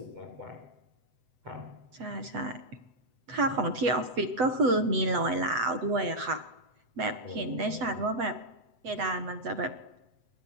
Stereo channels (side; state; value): left; late; 7.9 ms